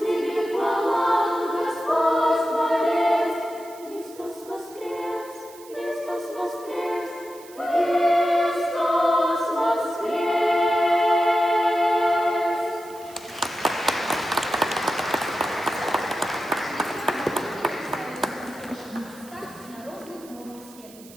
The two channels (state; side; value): noise; right; hiss, 21 dB below the sound